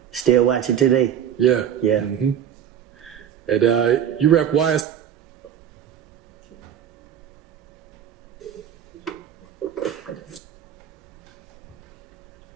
Still watch it today. Yeah. Yeah. Mm-hmm. And you rep YS.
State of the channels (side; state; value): left; quieter; 9.4 dB